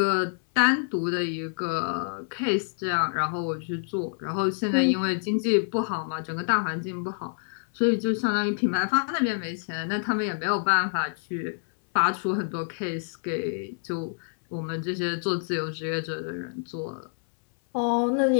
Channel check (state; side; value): silent; right; 60 dB below the other